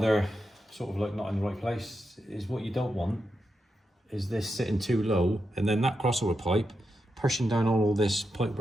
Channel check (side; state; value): both; normal; correlation 0.87